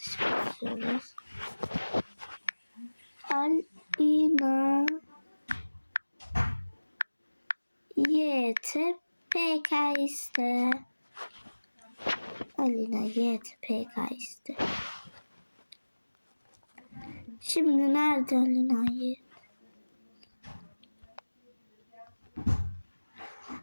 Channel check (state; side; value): inverted; both; correlation -1.00